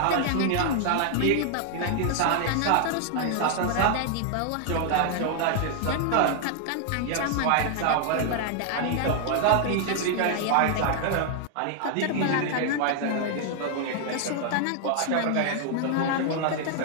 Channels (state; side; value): different; both; correlation 0.00